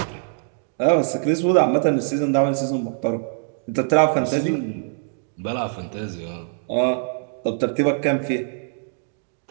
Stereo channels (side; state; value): left; silent; 63 dB below the other